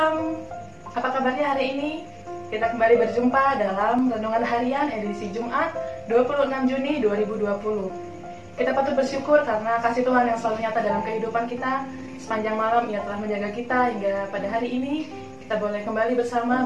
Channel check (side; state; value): both; identical; correlation 1.00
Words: apa kabarnya hari ini? Kita kembali berjumpa dalam Renungan Harian edisi Jumat 26 Juni 2020. Kita patut bersyukur karena kasih Tuhan yang selalu nyata dalam kehidupan kita. Sepanjang malam Ia telah menjaga kita hingga pada hari ini kita boleh kembali bersama